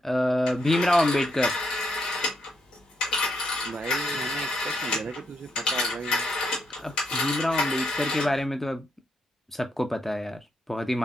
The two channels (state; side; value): normal; both; correlation 0.79